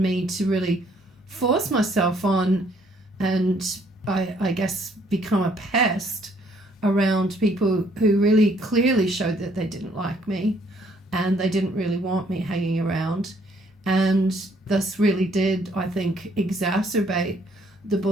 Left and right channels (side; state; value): both; normal; correlation 0.65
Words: to really force myself on, and I guess become a pest around people who really clearly showed that they didn't like me and they didn't really want me hanging around. And this really did, I think, exacerbate the